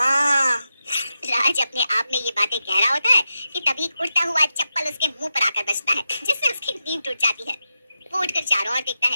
राज अपने आप में ये बातें कह रहा होता है कि तभी उड़ता हुआ चप्पल उसके मुंह पर आकर बजता है, जिससे उसकी नींद टूट जाती है। वो उठकर चारों ओर देखता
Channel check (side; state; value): both; inverted; correlation -0.89